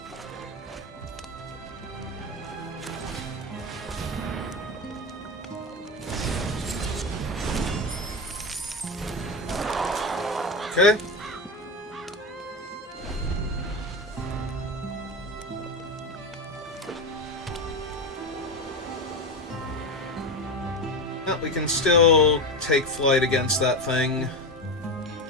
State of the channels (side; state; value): both; normal; correlation 0.18